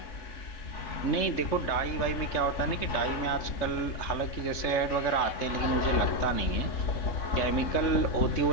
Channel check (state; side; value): late; right; 3.3 ms